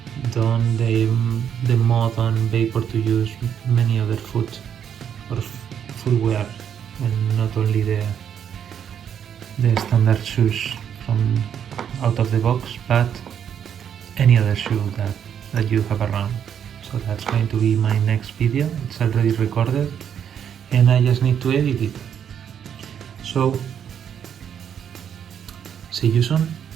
done the mod on Vapor to use many other foot or footwear, and not only the standard shoes from out of the box, but any other shoe that you have around. So that's going to be my next video. It's already recorded and I just need to edit it. So see you soon.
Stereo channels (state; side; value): quieter; left; 8.6 dB